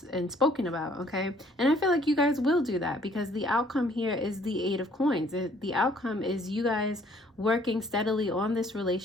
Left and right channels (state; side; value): normal; both; correlation 0.60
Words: spoken about. Okay, and I feel like you guys will do that, because the outcome here is the 8 of Coins. The outcome is you guys working steadily on this